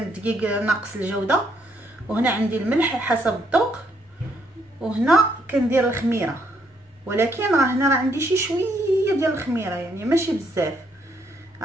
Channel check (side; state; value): both; normal; correlation 0.72